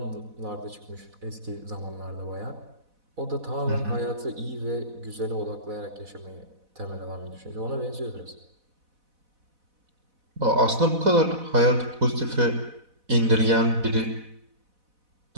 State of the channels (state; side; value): late; left; 4.0 ms